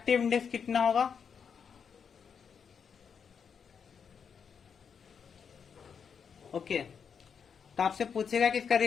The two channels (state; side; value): quieter; right; 6.7 dB